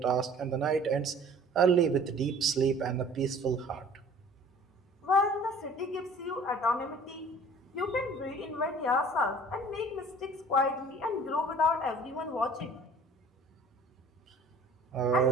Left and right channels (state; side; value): normal; both; correlation 0.49